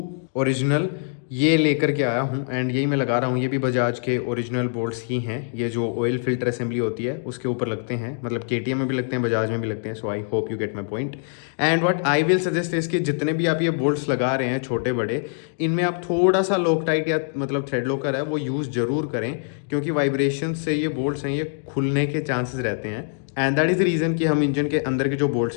ओरिजिनल ये लेकर के आया हूँ एंड यही मैं लगा रहा हूँ। ये भी बजाज के ओरिजिनल बोल्ट्स ही हैं, ये जो ऑयल फिल्टर असेंबली होती है उसके ऊपर लगते हैं, मतलब केटीएम में भी लगते हैं, बजाज में भी लगते हैं। So I hope you get my point. And what I will suggest is कि जितने भी आप ये बोल्ट्स लगा रहे हैं छोटे बड़े, इनमें आप थोड़ा सा लॉकटाइट या मतलब थ्रेड लॉकर है वो यूज़ जरूर करें, क्योंकि वाइब्रेशन से ये बोल्ट्स हैं ये खुलने के चांसेस रहते हैं। And that is the reason कि हम इंजन के अंदर के जो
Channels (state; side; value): silent; right; digital silence